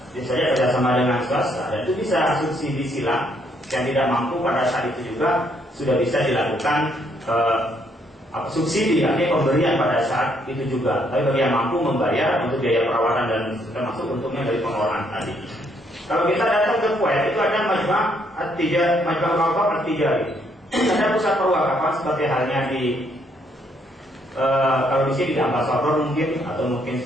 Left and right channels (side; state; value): both; normal; correlation 0.71